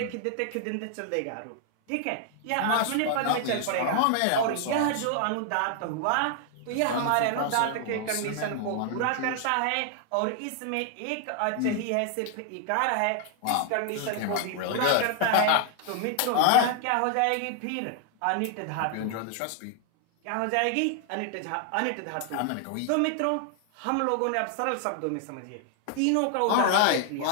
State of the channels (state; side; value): different; both; correlation 0.00